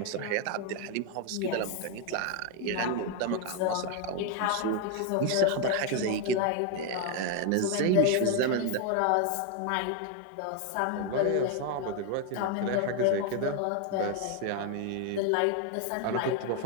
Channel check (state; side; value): different; both; correlation 0.01